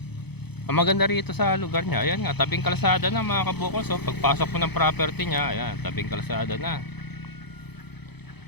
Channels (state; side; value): late; right; 0.98 ms